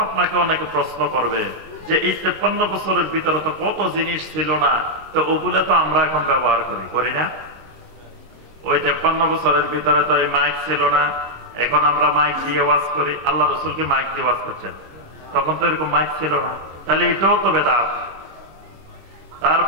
আপনাকে অনেকে প্রশ্ন করবে যে এই 53 বছরের ভিতরে তো কত জিনিস ছিল না, তো ওগুলো তো আমরা এখন ব্যবহার করি না? ওই 53 বছরের ভিতরে তো এই মাইক ছিল না, এখন আমরা মাইক দিয়ে ওয়াজ করি। আল্লাহ রাসূল কি মাইক দিয়ে ওয়াজ করছেন? তখন তো এরকম মাইক ছিল না, তাহলে এটাও তো বেদাত।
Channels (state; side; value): late; left; 26 ms